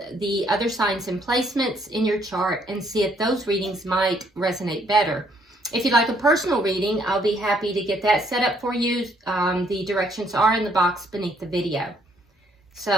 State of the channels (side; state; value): both; normal; correlation 0.68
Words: the other signs and placements in your chart and see if those readings might resonate better. If you'd like a personal reading, I'll be happy to get that set up for you. The directions are in the box beneath the video.